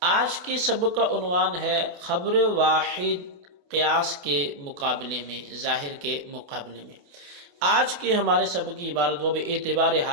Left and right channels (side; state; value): left; late; 28 ms